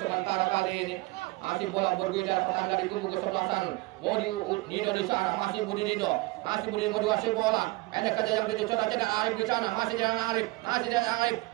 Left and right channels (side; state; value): left; quieter; 22.2 dB